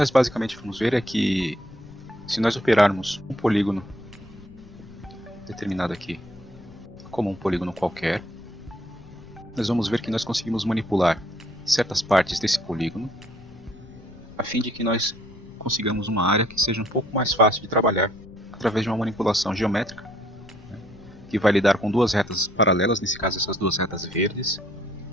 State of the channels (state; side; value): noise; left; rumble, 20 dB below the sound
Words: basicamente vamos ver é que se nós operarmos um polígono determinado aqui como um polígono qualquer, nós vamos ver que nós conseguimos manipular certas partes desse polígono a fim de que nós consigamos uma área que seja um pouco mais fácil de trabalhar através de uma manipulação geométrica, que vai lidar com duas retas paralelas, nesse caso essas duas retas verdes,